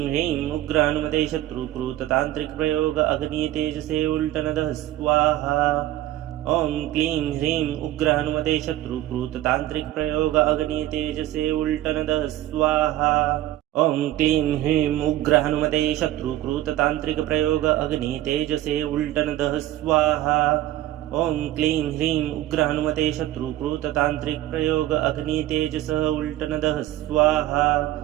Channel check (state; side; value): quieter; left; 14.4 dB